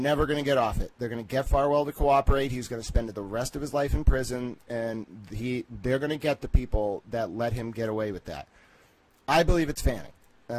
going to get off it. They're going to get Farwell to cooperate. He's going to spend the rest of his life in prison, and they're going to get the people that let him get away with that. I believe it's Fanning.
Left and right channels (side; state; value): both; identical; correlation 1.00